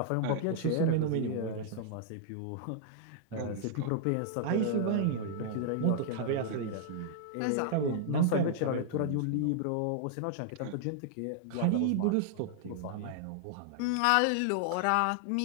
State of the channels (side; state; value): both; different; correlation -0.01